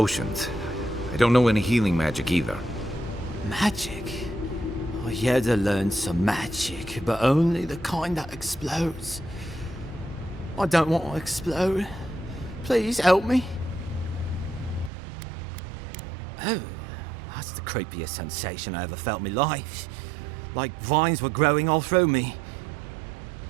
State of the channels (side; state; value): left; drops out; at 14.9 s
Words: I don't know any healing magic either. Magic? I had to learn some magic, but only the kind that explodes. I don't want to explode. Please help me. Oh, that's the creepiest sensation I ever felt in my life. Like vines were growing all through me.